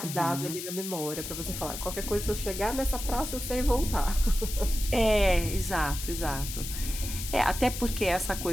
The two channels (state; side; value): noise; left; hiss, 7 dB below the sound